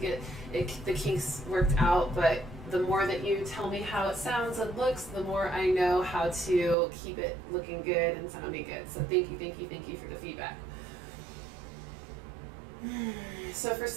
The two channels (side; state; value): left; drops out; at 6.8 s